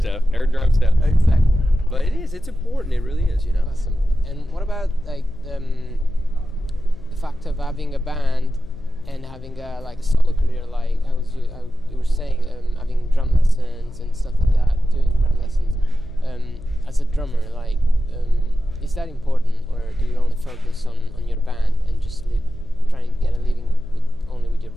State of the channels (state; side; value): noise; left; hum, 18 dB below the sound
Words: drum stuff. Exactly. But it's important. It really is, you know. Awesome. And what about like the fact of having a band and having a solo career, like you were saying, having drum lessons and stuff like that, doing drum lessons as a drummer, like, is that important, or do you only focus on your band and just trying to get a living only with your